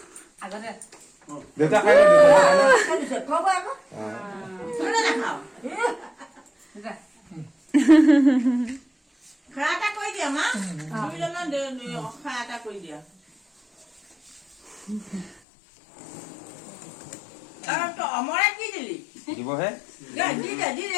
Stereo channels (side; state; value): right; drops out; at 15.4 s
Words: অমৰা কি দিলি দিবহে